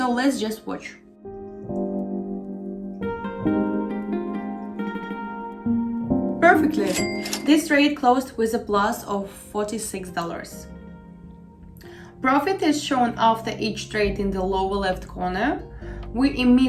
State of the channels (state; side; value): identical; both; correlation 1.00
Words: let's just watch. Perfectly. This trade closed with a plus of $46. Profit is shown after each trade in the lower left corner. We